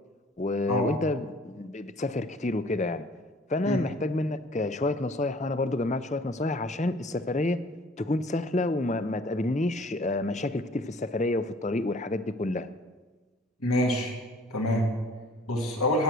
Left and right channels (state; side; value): normal; both; correlation 0.53